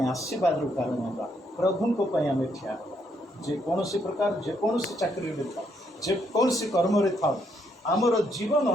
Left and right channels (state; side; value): normal; both; correlation 0.74